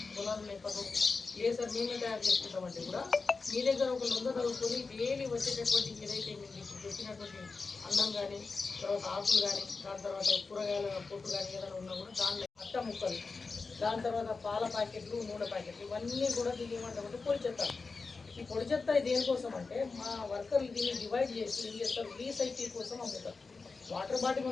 పొలాలు లేకపోతే లేదు సార్ మేమే తయారు చేసుకుంటామంటే కూడా మీ దగ్గర ఒక లొంగ చదువుకొని డైలీ వచ్చేటటువంటి ఏదైతే మీరు ఇప్పుడు చెప్పినటువంటి అన్నం కానీ, తర్వాత ఆకులు కానీ, దాని తర్వాత కూరగాయల పొట్టు కానీ ఏదైనా ఉన్నా కూడా దానిలో అట్ట ముక్కలు, దాని తర్వాత పాల ప్యాకెట్లు, నూనె ప్యాకెట్లు ఇవన్నీ కూడా దీన్ని ఏమంటామంటే పొడి చెత్త. ఈ పొడి చెత్త దేనికోసం అంటే మా వర్కర్లు దీన్ని డివైడ్ చేసి ఏం చేస్తారు, రీసైకిల్ కోసం అమ్ముతారు. వాటర్ బాటిల్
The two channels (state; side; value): quieter; right; 4.3 dB